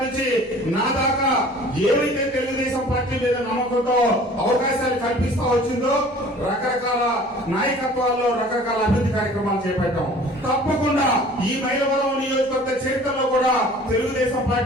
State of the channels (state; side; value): normal; both; correlation 0.48